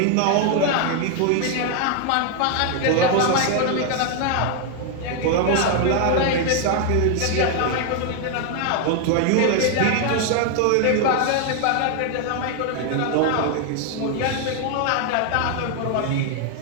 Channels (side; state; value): both; different; correlation 0.00